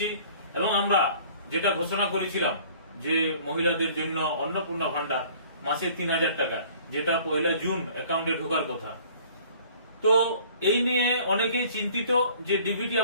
এবং আমরা যেটা ঘোষণা করেছিলাম যে মহিলাদের জন্য অন্নপূর্ণা ভান্ডার মাসে ৩,০০০ টাকা, যেটা ১ জুন অ্যাকাউন্টে ঢোকার কথা। তো এই নিয়ে অনেকেই চিন্তিত যে ডিবিটি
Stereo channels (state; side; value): inverted; both; correlation -0.52